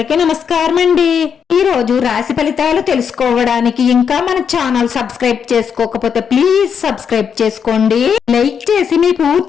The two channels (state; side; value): quieter; right; 7.2 dB